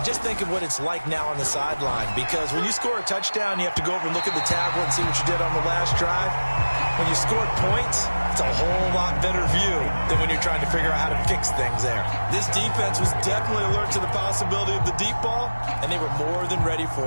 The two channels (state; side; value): inverted; both; correlation -1.00